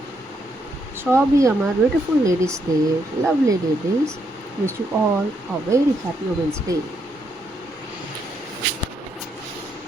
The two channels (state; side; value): normal; both; correlation 0.77